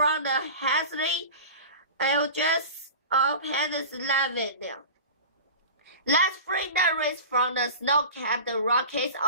the hazy edges of Pennsylvania. Let's free the race from the snow-capped Rockies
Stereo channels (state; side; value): inverted; both; correlation -0.34